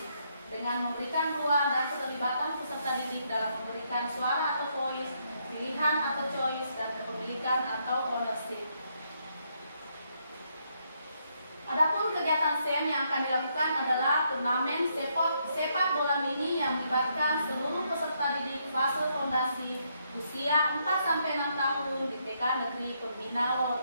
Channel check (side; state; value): both; inverted; correlation -0.75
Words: dengan memberikan ruang dan keterlibatan peserta didik dalam memberikan suara atau voice, pilihan atau choice, dan kepemilikan atau ownership. Adapun kegiatan SEM yang akan dilakukan adalah turnamen sepak bola mini yang melibatkan seluruh peserta didik fase fondasi usia 4-6 tahun di TK Negeri Pembina